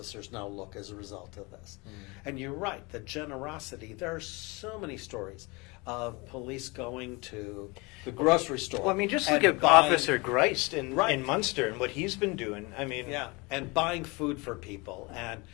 now look as a result of this? And you're right, the generosity, there are so many stories of police going to the grocery store. Well, I mean, just and look at buying- Officer Greist in Right. Munster and what he's been doing. I mean, Yeah, and buying food for people and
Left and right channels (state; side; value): quieter; right; 26.6 dB